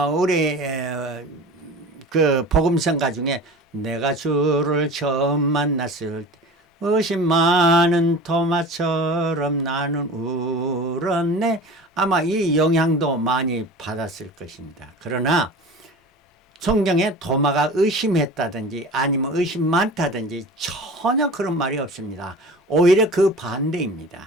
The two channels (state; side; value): normal; both; correlation 0.37